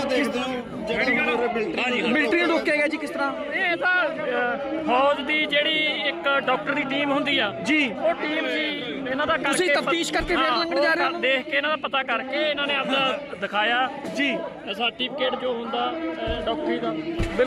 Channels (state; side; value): identical; both; correlation 1.00